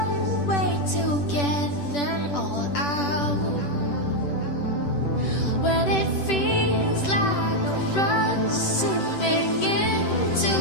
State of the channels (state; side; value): late; right; 10 ms